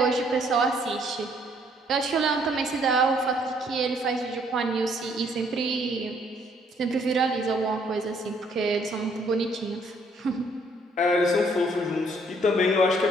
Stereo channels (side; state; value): both; normal; correlation 0.65